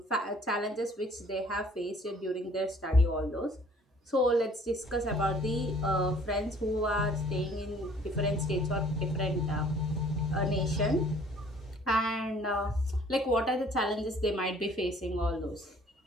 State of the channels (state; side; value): normal; both; correlation 0.56